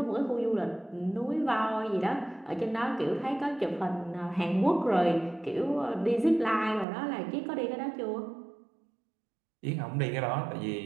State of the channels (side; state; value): left; drops out; at 6.9 s